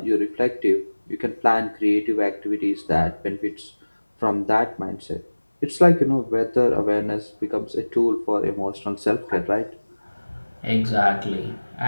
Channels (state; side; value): inverted; both; correlation -1.00